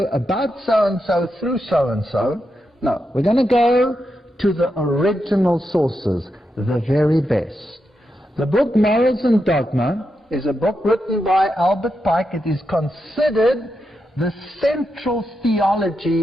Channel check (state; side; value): normal; both; correlation 0.86